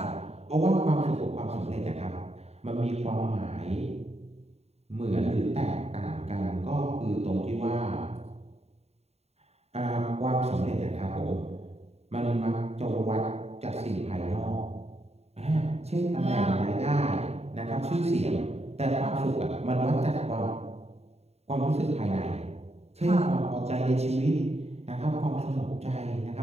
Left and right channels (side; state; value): left; late; 0.30 ms